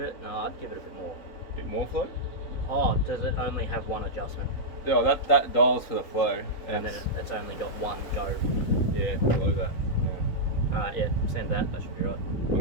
give it a bit more. Bit more flow? Oh, does it only have one adjustment? Yeah, that dials for the flow. And then it's only got one go. Yeah, below that. Yeah, send that, that should be right.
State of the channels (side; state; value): right; late; 4.0 ms